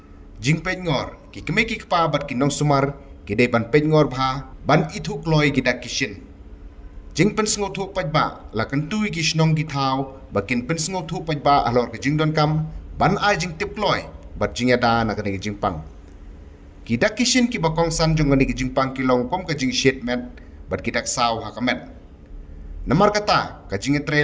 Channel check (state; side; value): identical; both; correlation 1.00